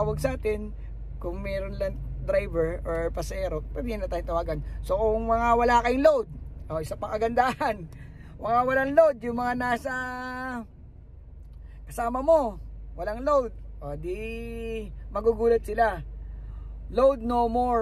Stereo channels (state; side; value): identical; both; correlation 1.00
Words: sa atin. Kung meron lang driver or pasero, pwede na tayo tawagan. So kung mga wala kayong load, isa pang kagandahan, mga walang load, yung mga nasa kasama mo, walang load, di magugulat sila. Load no